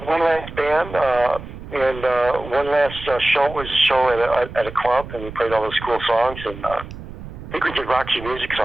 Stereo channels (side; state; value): right; noise; rumble, 13 dB below the sound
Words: last band, and one last show was a show at a club, and we played all those cool songs, and I think we did Roxy Music